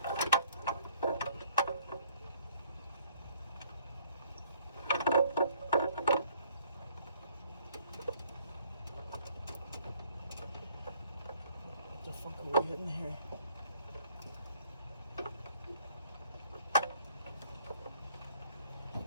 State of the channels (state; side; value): inverted; both; correlation -0.62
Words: What the fuck are we hitting here?